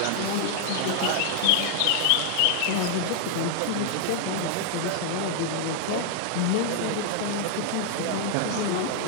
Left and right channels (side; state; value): both; different; correlation 0.00